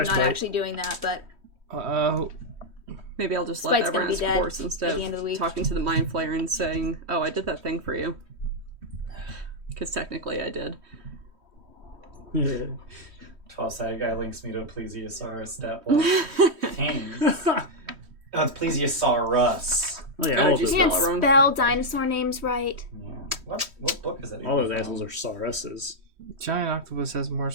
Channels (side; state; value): left; late; 3.1 ms